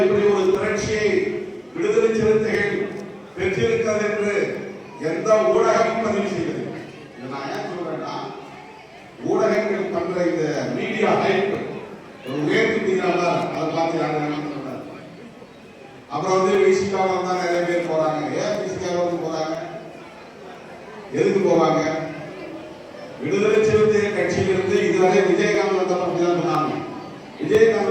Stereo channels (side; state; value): both; identical; correlation 1.00